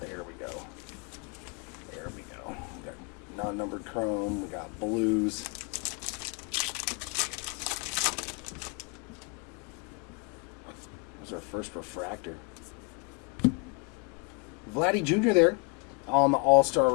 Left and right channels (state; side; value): quieter; right; 32.4 dB